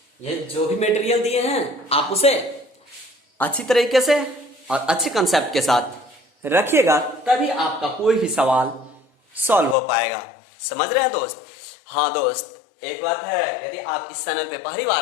ये जो भी मटेरियल दिए हैं आप उसे अच्छी तरीके से और अच्छे कंसेप्ट के साथ रखिएगा, तभी आपका कोई भी सवाल सॉल्व हो पाएगा। समझ रहे हैं दोस्त? हाँ दोस्त, एक बात है, यदि आप इस चैनल पे पहली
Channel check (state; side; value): drops out; right; at 9.8 s